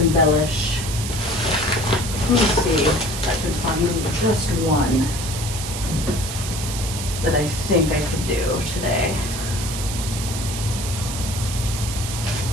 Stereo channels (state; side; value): noise; right; hiss, 7 dB below the sound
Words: Let me see if I can find just one that I think I could do today.